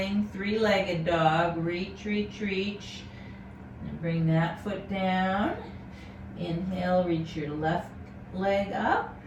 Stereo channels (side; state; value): both; identical; correlation 1.00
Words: three-legged dog, reach, reach, reach. And bring that foot down. Inhale, reach your left leg up.